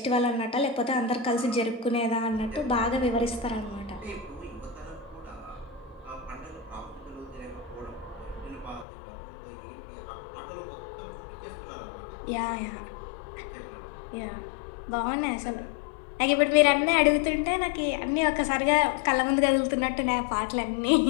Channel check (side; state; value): right; drops out; at 8.8 s